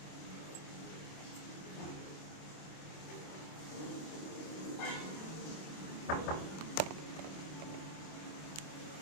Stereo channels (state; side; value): late; right; 26 ms